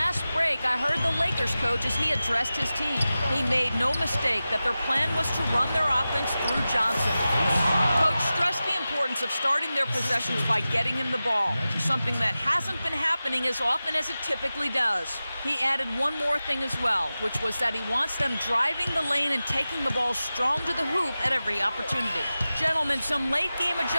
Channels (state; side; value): inverted; both; correlation -0.95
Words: break, I heard the Lakers coach as he addressed his team. He made no mistake that their plan was to run their offense through Johnson. Coach stressed the importance of starting their possessions by getting him the ball, something that hasn't been happening as often as it typically does. He added one more thing as well, which was that he wants them driving the lane and taking the ball strong to the hoop at every opportunity. Gentlemen, some late-game